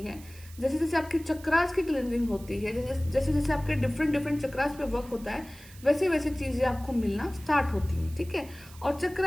जैसे जैसे आपके चक्रास की क्लिनजिंग होती है, जैसे जैसे जैसे आपके डिफरेंट डिफरेंट चक्रास पे वर्क होता है, वैसे वैसे चीज़ें आपको मिलना स्टार्ट होती हैं, ठीक है। और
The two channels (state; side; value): noise; right; hiss, 21 dB below the sound